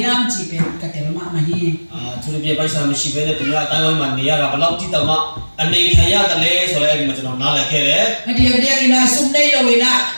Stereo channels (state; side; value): inverted; both; correlation -1.00